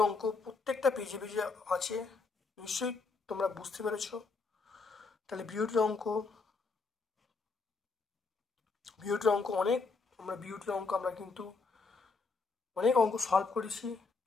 অঙ্ক প্রত্যেকটা পেজে পেজে আছে, নিশ্চয়ই তোমরা বুঝতে পেরেছো। তাহলে বিওটির অঙ্ক আমরা কিন্তু অনেক অঙ্ক সলভ করেছি।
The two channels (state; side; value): quieter; right; 4.2 dB